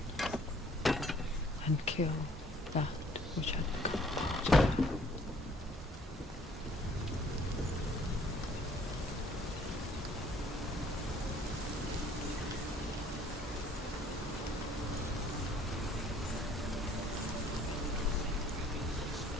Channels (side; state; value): both; normal; correlation 0.58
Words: and kill that which had become dead.